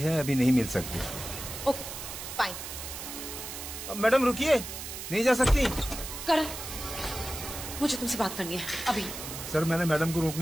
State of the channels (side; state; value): right; noise; hiss, 8 dB below the sound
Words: अभी नहीं मिल सकती। Okay fine. मैडम रुकिए, नहीं जा सकती। करण, मुझे तुमसे बात करनी है अभी। सर मैंने मैडम को